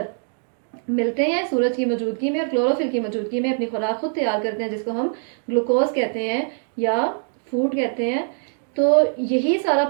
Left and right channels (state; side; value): silent; left; digital silence